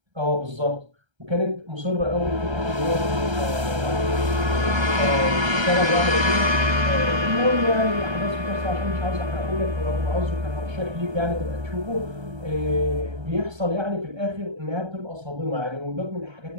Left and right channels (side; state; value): left; late; 1.3 ms